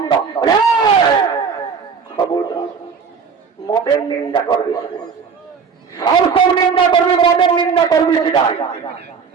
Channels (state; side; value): quieter; left; 5.9 dB